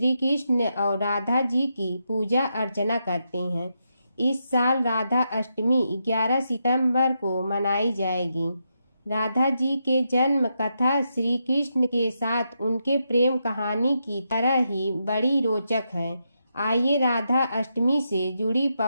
कृष्ण और राधा जी की पूजा अर्चना करते हैं। इस साल राधा अष्टमी 11 सितंबर को मनाई जाएगी। राधा जी के जन्म कथा श्री कृष्ण के साथ उनके प्रेम कहानी की तरह ही बड़ी रोचक है। आइए राधा अष्टमी से जुड़ी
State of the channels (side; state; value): both; inverted; correlation -0.83